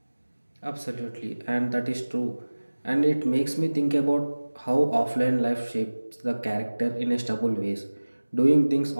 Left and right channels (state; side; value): inverted; both; correlation -1.00